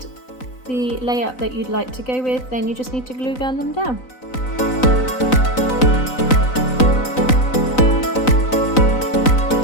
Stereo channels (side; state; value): right; late; 3.9 ms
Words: the layout that you'd like to go with, then you just need to glue gun them down.